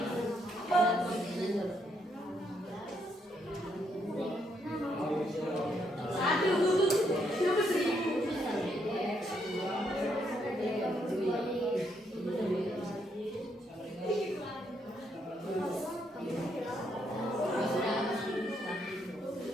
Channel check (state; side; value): normal; both; correlation 0.75